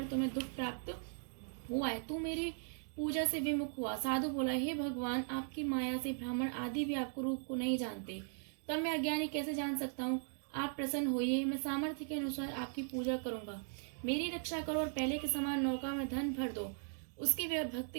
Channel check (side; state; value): left; silent; 52 dB below the other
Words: तुम्हें दुख प्राप्त हुआ है, तू मेरी पूजा से विमुख हुआ। साधु बोला, हे भगवान, आपकी माया से ब्राह्मण आदि भी आपको रूप को नहीं जानते, तब मैं अज्ञानी कैसे जान सकता हूँ? आप प्रसन्न होइए, मैं सामर्थ्य के अनुसार आपकी पूजा करूंगा। मेरी रक्षा करो और पहले के समान नौका में धन भर दो। उसके